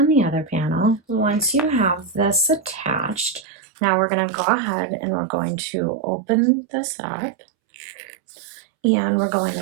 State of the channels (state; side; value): drops out; left; at 3.5 s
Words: the other panel. Once you have this attached, Now we're going to go ahead and we're going to open this up, and we're going